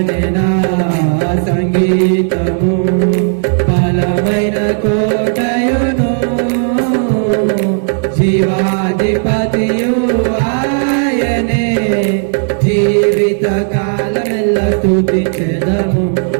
నా సంగీతము బలమైన కోటయును జీవాధిపతియు ఆయనే జీవిత కాలమెల్ల స్తుతించెదము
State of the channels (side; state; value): left; silent; digital silence